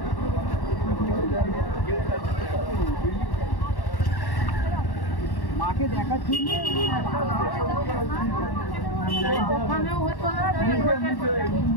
মাকে দেখার জন্য ওখানেও হতো না।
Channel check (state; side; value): late; right; 1.1 ms